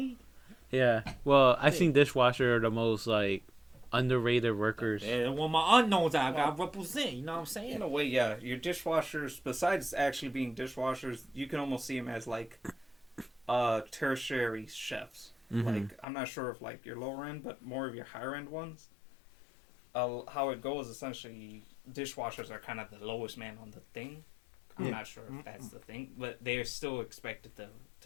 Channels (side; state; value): right; drops out; at 16.1 s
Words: Yeah. Well, I think dishwashers are the most like underrated workers. And when my unknowns, I got to represent. You know what I'm saying? In a way, yeah. Your dishwashers, besides actually being dishwashers, you can almost see them as like tertiary chefs. Mhm. Like, I'm not sure if like your lower end, but more of your higher end ones. How it goes, essentially, dishwashers are kind of the lowest man on the thing. I'm not sure if that's the thing, but they're still expected